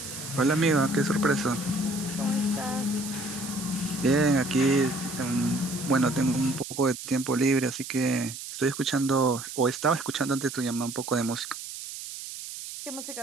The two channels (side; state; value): right; noise; hiss, 10 dB below the sound